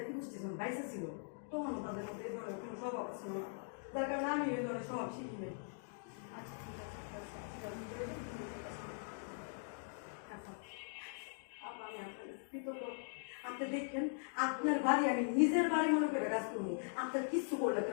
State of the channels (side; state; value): right; silent; digital silence